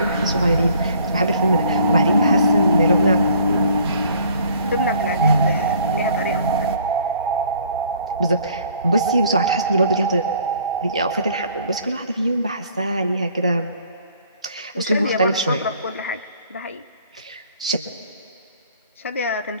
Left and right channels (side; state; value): both; inverted; correlation -0.57